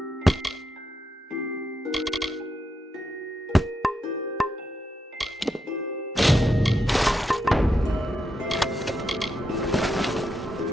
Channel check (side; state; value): both; normal; correlation 0.83